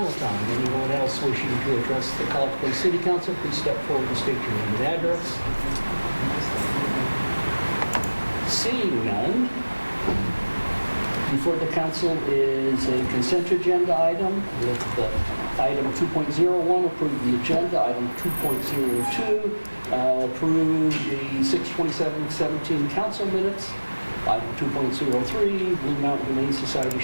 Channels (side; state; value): both; inverted; correlation -1.00